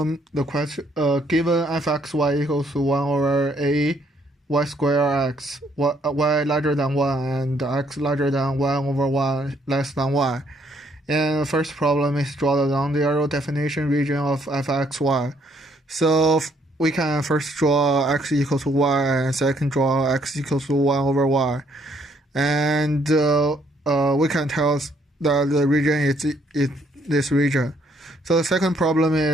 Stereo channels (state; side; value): normal; both; correlation 0.68